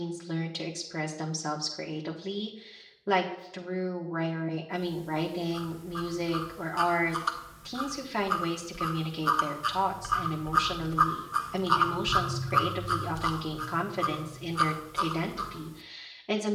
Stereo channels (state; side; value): identical; both; correlation 1.00